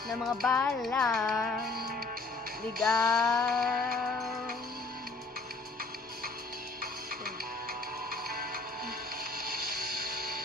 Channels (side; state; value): right; quieter; 3.5 dB